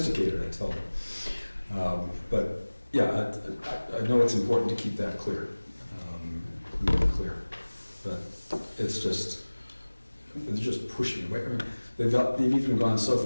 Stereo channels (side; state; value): both; inverted; correlation -1.00